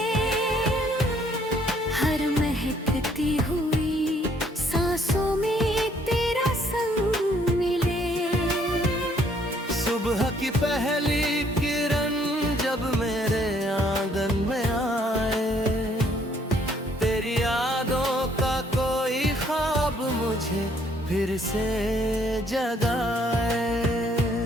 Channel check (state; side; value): normal; both; correlation 0.65